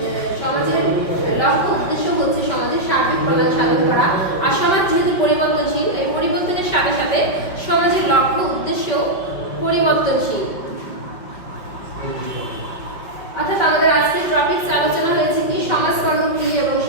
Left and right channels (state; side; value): late; right; 5.4 ms